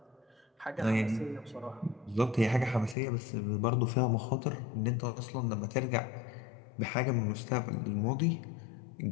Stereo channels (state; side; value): drops out; right; at 3.0 s